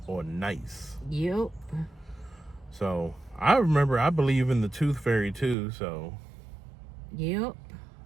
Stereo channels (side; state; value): left; drops out; at 5.6 s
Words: or nice. Yep. So I believe in the Tooth Fairy too. So yep.